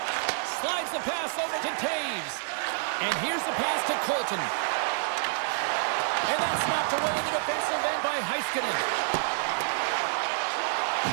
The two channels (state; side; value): silent; left; digital silence